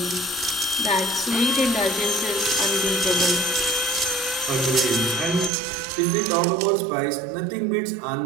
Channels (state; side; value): drops out; left; at 5.5 s